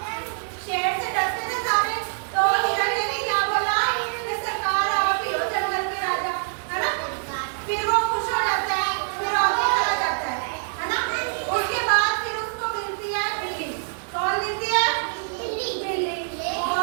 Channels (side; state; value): left; silent; digital silence